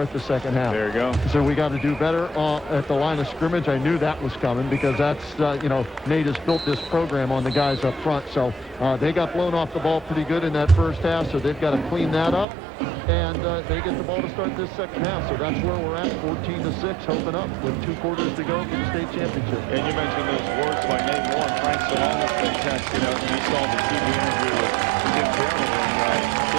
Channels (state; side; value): drops out; left; at 12.5 s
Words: the second half. There you go. So we got to do better at the line of scrimmage. I knew that was coming because that's, Nate has built this program on the guys up front. So they got blown off the ball pretty good in that first half, so they've got to clean that up. And they get the ball to start this second half. So that's where we're at, 14-6, hoping up with 2 quarters to go for the state championship. And you mentioned those words by Nate Moore, and Frank Salon has been texting us. He saw the TV interview with Tim Carroll, and